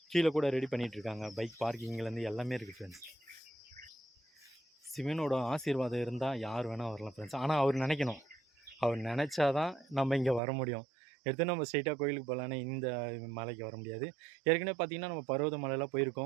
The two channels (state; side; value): drops out; left; at 10.4 s